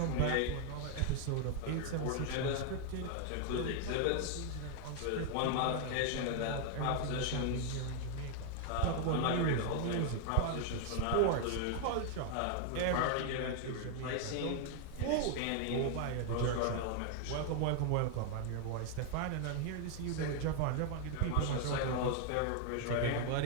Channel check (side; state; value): both; different; correlation 0.00